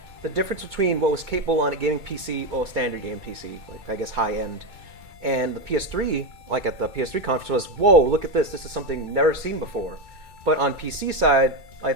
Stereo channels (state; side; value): late; left; 2.2 ms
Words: the difference between what was capable on a gaming PC, well, a standard game PC, like I guess high end, And the PS3, like at the PS3 conference, was, whoa, look at this. This is something never seen before. But on PC side, I